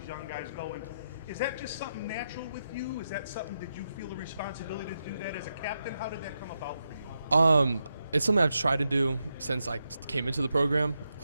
young guys going. Is that just something natural with you? Is that something that you feel the responsibility to do that as a captain? How did that come about for you? It's something I've tried to do since I came into the program.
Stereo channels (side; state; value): both; inverted; correlation -0.85